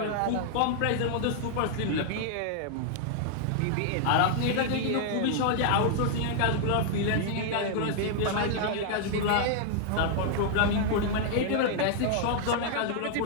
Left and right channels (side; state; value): both; different; correlation 0.00